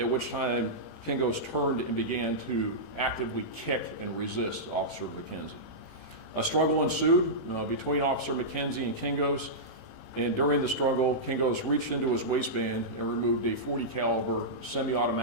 which time Kingos turned and began to actively kick and resist Officer McKenzie. A struggle ensued between Officer McKenzie and Kingos, and during the struggle, Kingos reached into his waistband and removed a .40 caliber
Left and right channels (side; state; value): right; late; 18 ms